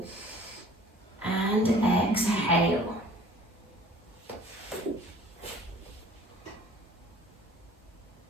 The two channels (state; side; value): normal; both; correlation 0.50